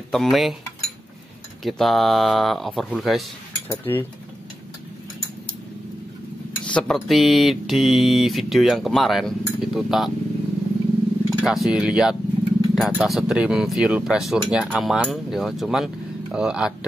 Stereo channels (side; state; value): both; normal; correlation 0.90